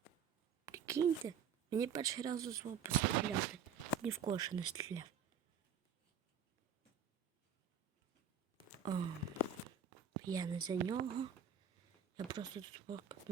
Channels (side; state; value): left; quieter; 6.8 dB